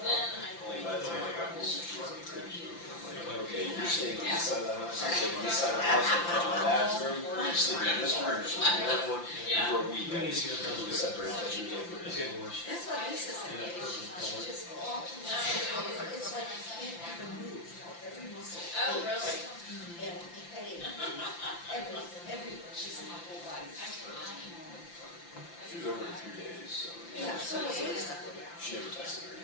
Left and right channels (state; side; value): late; right; 5.8 ms